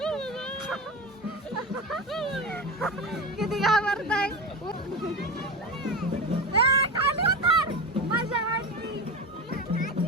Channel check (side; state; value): both; normal; correlation 0.23